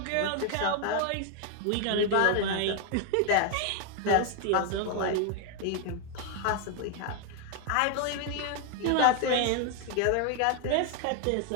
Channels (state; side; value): different; both; correlation 0.00